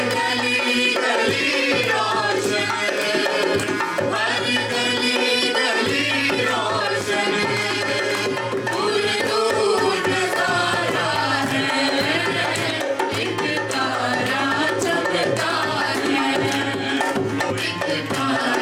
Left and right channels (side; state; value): both; identical; correlation 1.00